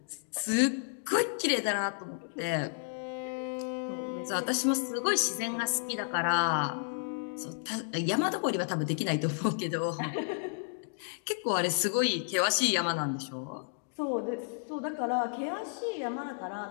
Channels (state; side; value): silent; right; digital silence